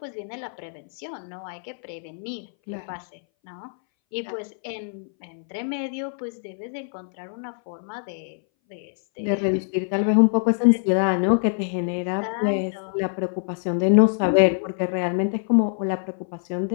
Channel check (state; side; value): silent; right; 60 dB below the other